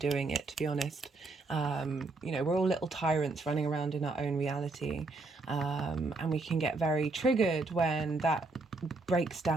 it, to be honest. You know, we're all little tyrants running around in our own reality. And we can get very triggered when that breaks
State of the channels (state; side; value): quieter; left; 3.4 dB